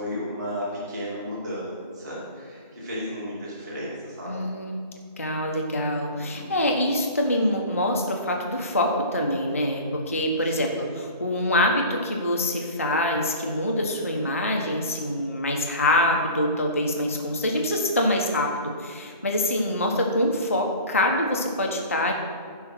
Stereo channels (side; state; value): both; inverted; correlation -0.38